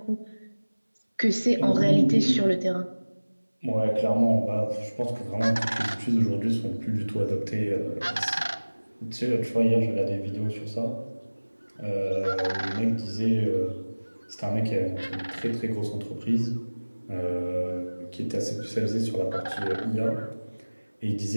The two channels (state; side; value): inverted; both; correlation -1.00